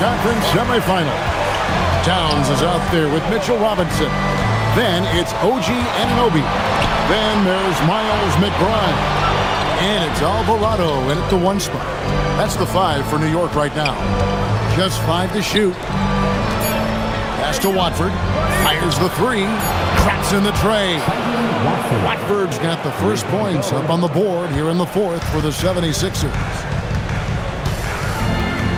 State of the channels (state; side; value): identical; both; correlation 1.00